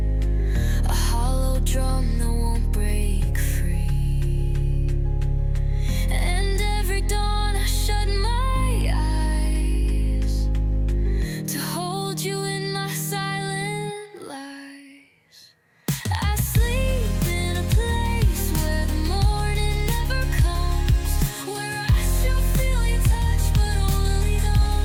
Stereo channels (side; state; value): both; identical; correlation 1.00